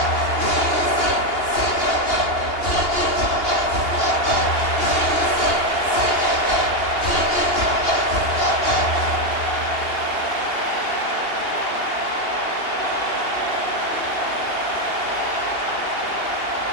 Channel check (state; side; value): late; right; 2.8 ms